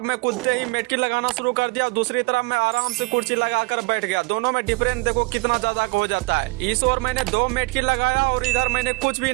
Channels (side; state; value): left; quieter; 26.0 dB